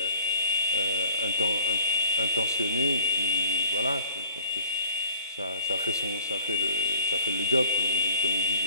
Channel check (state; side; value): inverted; both; correlation -0.48